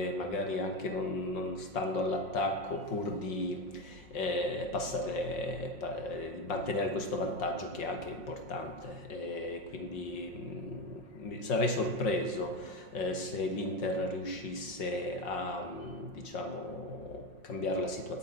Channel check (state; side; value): late; right; 5.6 ms